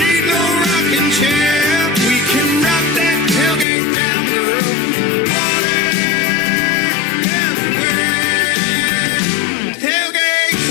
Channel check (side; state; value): right; drops out; at 3.7 s